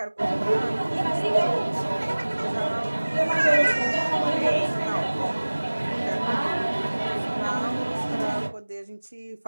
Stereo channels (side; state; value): both; inverted; correlation -1.00